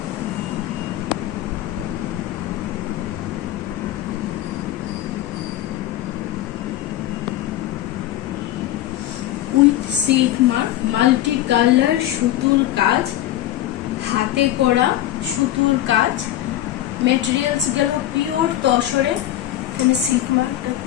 With silk mark, multi color সুতুর কাজ, হাতে করা সুতুর কাজ। মেটেরিয়ালস গেল পিওর তসরে। এখানে সিল্ক মার্কটা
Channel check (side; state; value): right; quieter; 13.5 dB